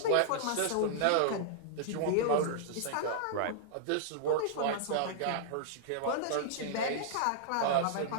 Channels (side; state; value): both; different; correlation -0.01